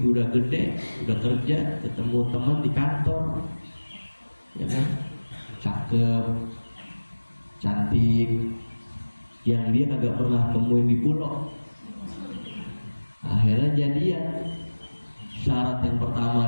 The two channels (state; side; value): inverted; both; correlation -1.00